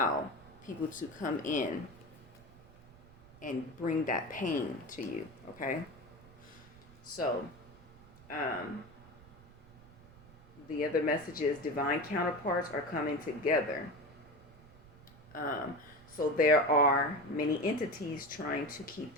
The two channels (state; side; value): noise; right; rumble, 22 dB below the sound